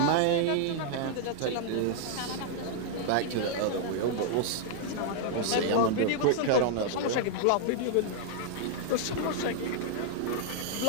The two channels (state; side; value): different; both; correlation -0.01